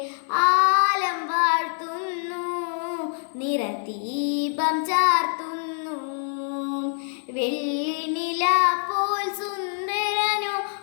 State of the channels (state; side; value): silent; right; 62 dB below the other